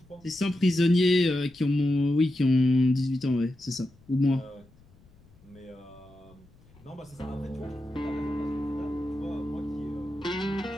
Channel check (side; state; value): left; noise; rumble, 28 dB below the sound